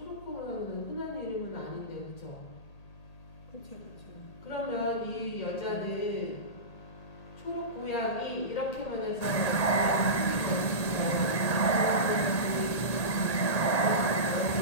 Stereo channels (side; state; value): right; late; 1.8 ms